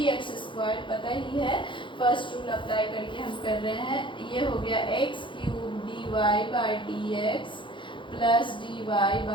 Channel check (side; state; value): right; late; 0.24 ms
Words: स्क्वायर, पता ही है, फर्स्ट रूल अप्लाई करके हम कर रहे हैं। ये हो गया x cube dy by dx plus dy